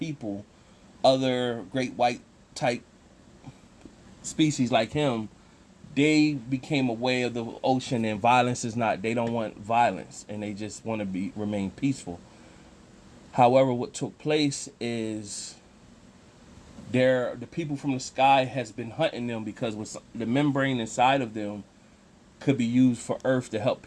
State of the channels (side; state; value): both; identical; correlation 1.00